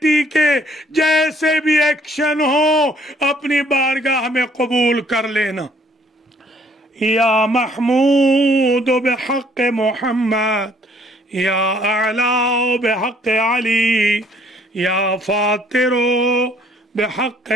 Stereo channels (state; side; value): normal; both; correlation 0.62